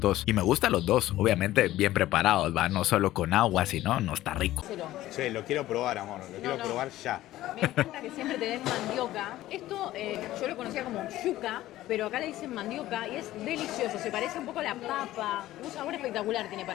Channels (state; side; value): quieter; right; 15.1 dB